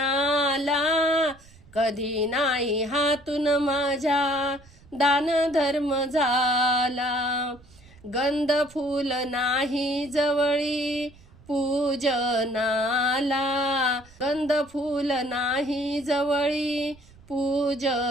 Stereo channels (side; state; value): right; noise; rumble, 25 dB below the sound